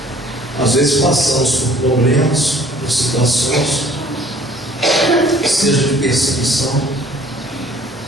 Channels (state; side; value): normal; both; correlation 0.54